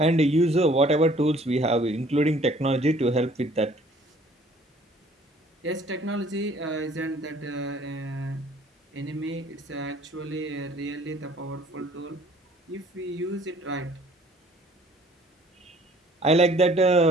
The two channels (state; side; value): normal; both; correlation 0.56